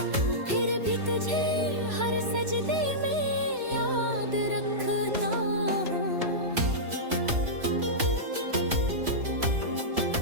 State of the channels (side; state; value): left; late; 3.0 ms